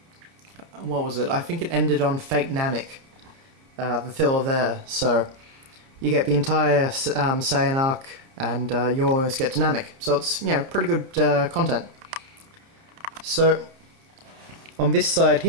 what was it? I think it ended on Fake Namek, the filler there. So you get the entire Saiyan arc, and you almost get to Namek. So it's, pretty good content. So, on this side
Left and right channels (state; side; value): late; left; 30 ms